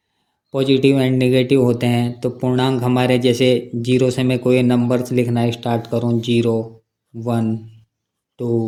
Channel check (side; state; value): both; identical; correlation 1.00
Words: पॉजिटिव एंड नेगेटिव होते हैं। तो पूर्णांक हमारे, जैसे 0 से मैं कोई नंबर्स लिखना स्टार्ट करूँ, 0, 1,